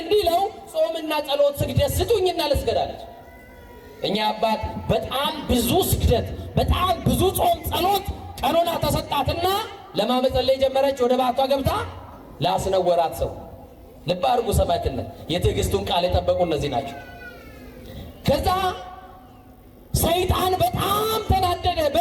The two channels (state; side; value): identical; both; correlation 1.00